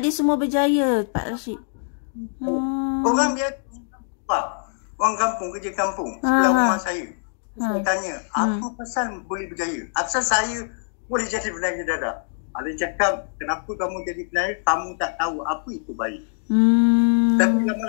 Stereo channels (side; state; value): right; silent; digital silence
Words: dia semua berjaya, Pak Rashid. Orang biasa. Orang kampung, kerja kampung. Sebelah rumah saya. Saya tanya, apa pasal boleh berjaya? Asal saya boleh jadi penangis dadah? Ada cakap, kenapa kamu jadi penari, kamu tak tahu apa itu baik. Tapi